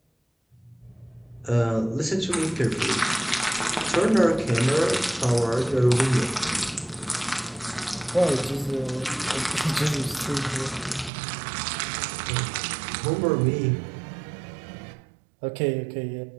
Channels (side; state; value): left; drops out; at 11.1 s